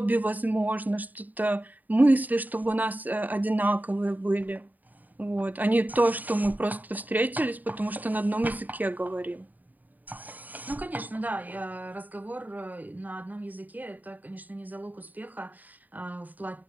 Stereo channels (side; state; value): left; late; 0.083 ms